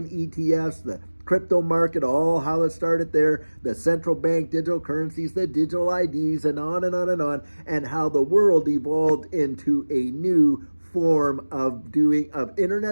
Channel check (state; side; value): inverted; both; correlation -1.00